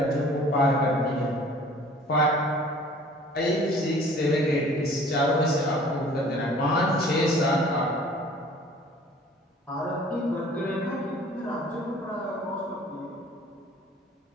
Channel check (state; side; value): normal; both; correlation 0.50